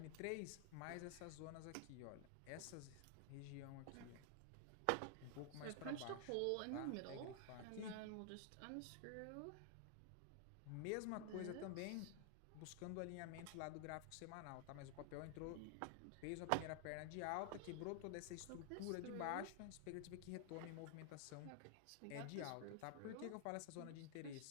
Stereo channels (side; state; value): both; different; correlation 0.00